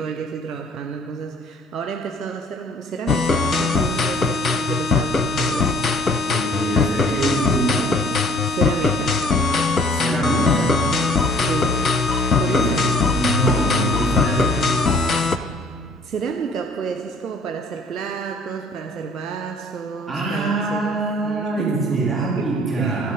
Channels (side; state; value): both; normal; correlation 0.56